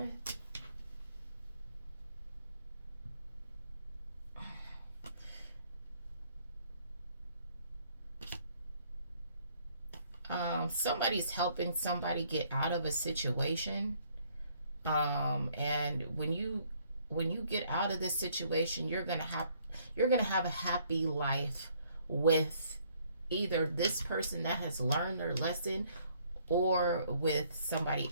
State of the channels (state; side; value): inverted; both; correlation -0.65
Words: Somebody's helping somebody get out of a situation. And when you get out of this situation, you're gonna have a happy life with either this person that has learned their lesson or with somebody